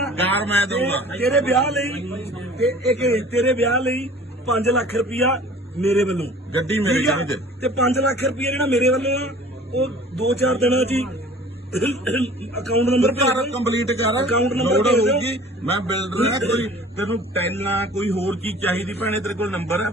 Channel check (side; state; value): both; normal; correlation 0.47